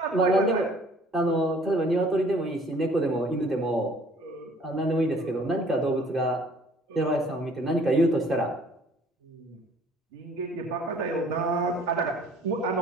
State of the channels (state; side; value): normal; both; correlation 0.55